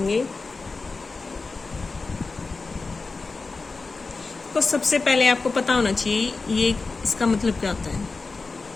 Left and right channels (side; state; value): right; quieter; 4.0 dB